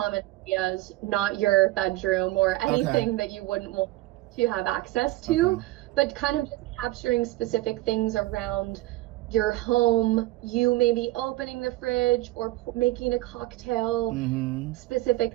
areas, not your bedroom or anything that you wouldn't want to have access to, but kind of just capturing specific things around your home, you maybe opening the fridge or making a cocktail, specific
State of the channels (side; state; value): left; quieter; 18.1 dB